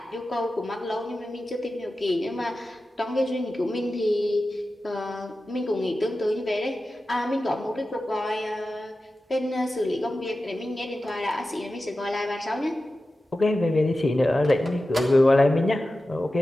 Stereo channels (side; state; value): both; normal; correlation 0.93